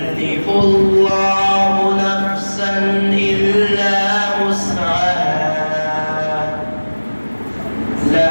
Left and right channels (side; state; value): both; inverted; correlation -1.00